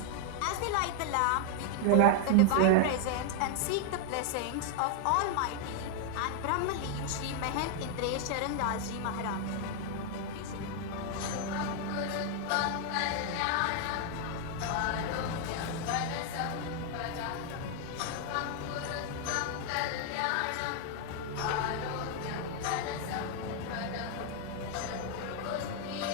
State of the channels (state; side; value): different; both; correlation 0.00